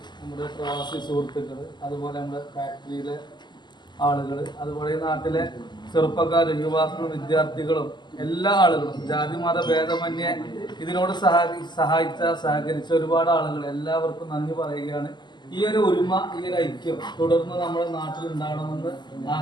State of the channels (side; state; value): right; late; 0.21 ms